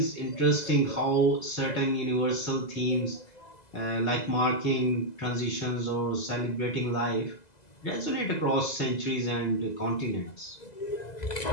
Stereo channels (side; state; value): right; late; 2.0 ms